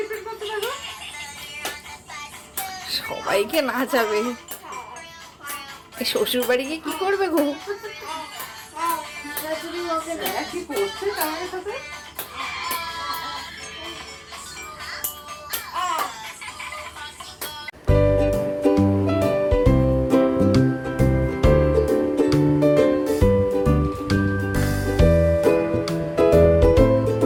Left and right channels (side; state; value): both; identical; correlation 1.00